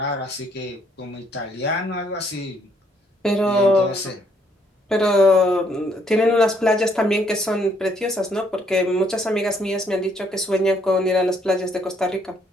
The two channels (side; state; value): both; normal; correlation 0.69